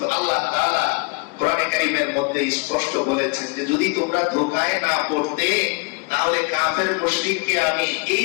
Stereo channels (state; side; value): quieter; right; 28.0 dB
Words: আল্লাহ তাআলা কোরআনে কারীমের মধ্যে স্পষ্ট বলেছেন যে যদি তোমরা ধোঁকায় না পড়তে, তাহলে কাফের মুশরিককে আমি এই